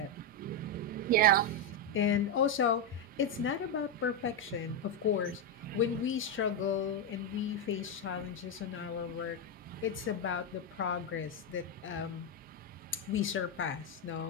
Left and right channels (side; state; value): both; normal; correlation 0.04